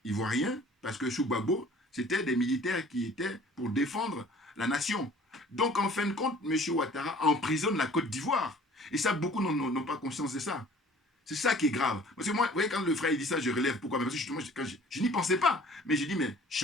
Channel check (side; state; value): both; normal; correlation 0.51